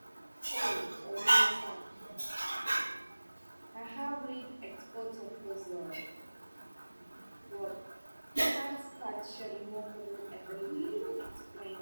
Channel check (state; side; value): inverted; both; correlation -1.00